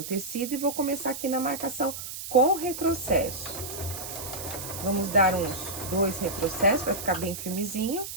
tecido e vou começar aqui na marcação com retrocesso. Vamos dar uns 2 retrocessos para ficar bem firmezinho.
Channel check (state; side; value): noise; right; hiss, 8 dB below the sound